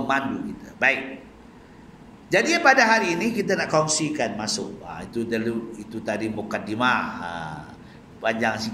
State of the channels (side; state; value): both; identical; correlation 1.00